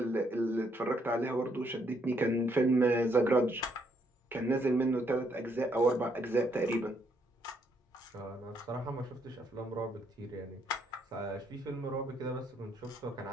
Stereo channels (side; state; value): both; normal; correlation 0.72